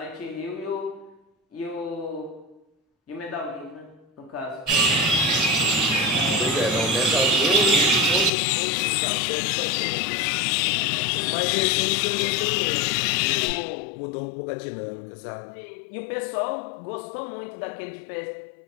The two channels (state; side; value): drops out; right; at 8.3 s